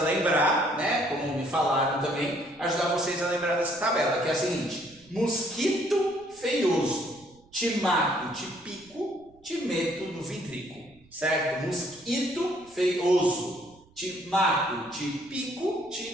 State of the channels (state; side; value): noise; right; rumble, 29 dB below the sound